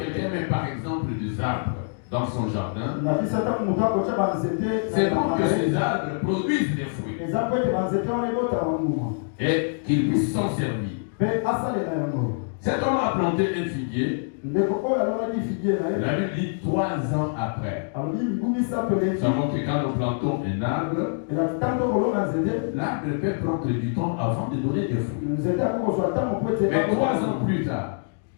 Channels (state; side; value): silent; right; digital silence